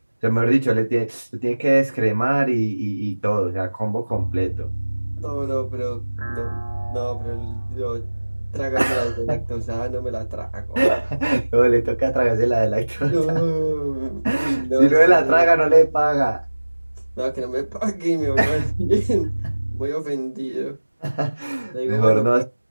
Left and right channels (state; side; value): inverted; both; correlation -1.00